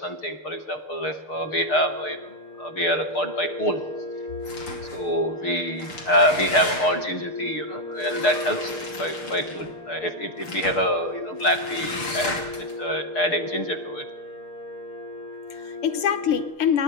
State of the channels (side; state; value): right; late; 6.7 ms